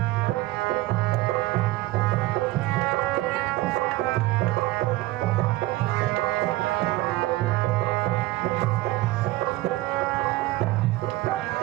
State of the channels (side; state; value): left; quieter; 18.1 dB